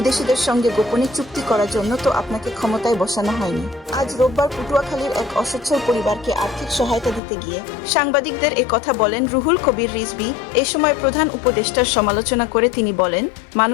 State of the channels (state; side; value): drops out; right; at 7.2 s